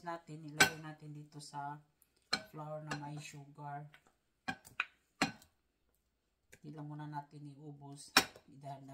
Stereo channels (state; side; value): identical; both; correlation 1.00